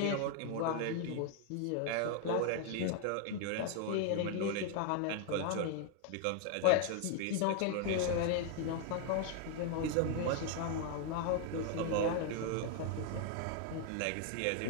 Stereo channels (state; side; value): different; both; correlation 0.00